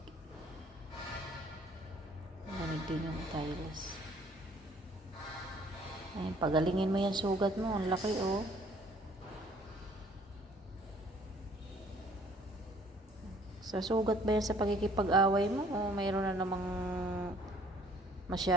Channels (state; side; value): normal; both; correlation 0.58